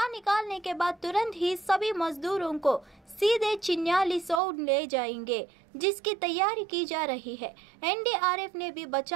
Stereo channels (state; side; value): drops out; left; at 4.4 s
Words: निकालने के बाद तुरंत ही सभी मजदूरों को सीधे चिन्याली सौड़ ले जाएंगे, जिसकी तैयारी की जा रही है। एनडीआरएफ ने भी